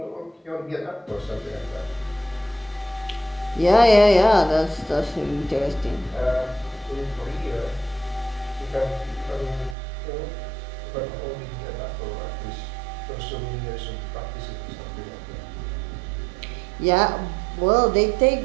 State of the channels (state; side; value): drops out; left; at 9.8 s